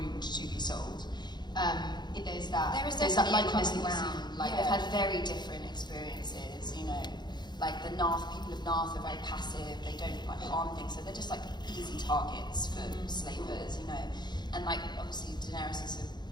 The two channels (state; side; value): late; right; 0.21 ms